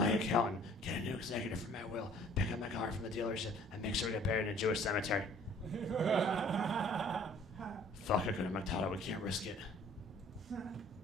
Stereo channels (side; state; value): both; normal; correlation 0.54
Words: accountant, get a new executive for my will, pick up my car from the dealership, and make sure we get buried in a Jewish cemetery. Fuck, I go to McDonald's. We can't risk it.